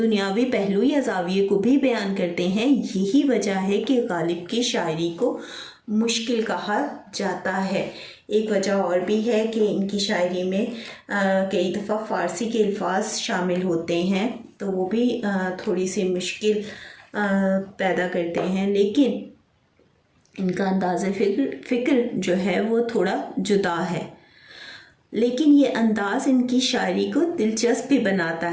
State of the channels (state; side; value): identical; both; correlation 1.00